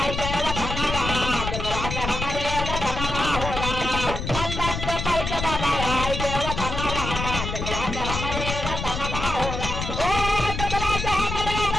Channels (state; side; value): noise; left; rumble, 5 dB below the sound